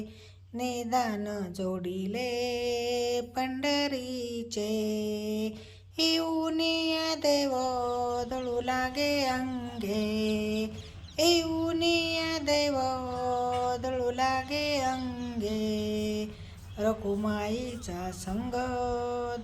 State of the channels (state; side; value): identical; both; correlation 1.00